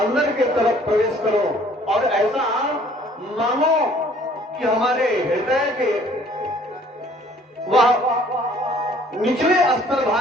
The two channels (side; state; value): both; normal; correlation 0.57